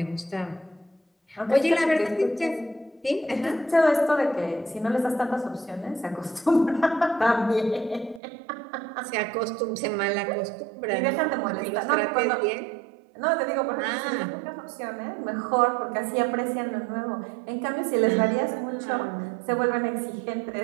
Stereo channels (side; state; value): left; drops out; at 8.2 s